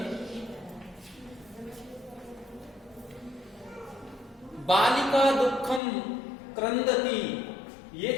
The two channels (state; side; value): drops out; right; at 5.8 s